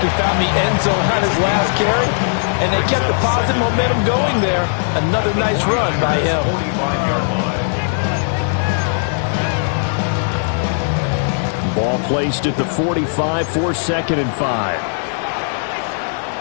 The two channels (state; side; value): silent; right; digital silence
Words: he found the end zone on his last carry, and they kept the positive momentum going there. Another nice run by him. Ball placed at the 45 for 2nd and 5.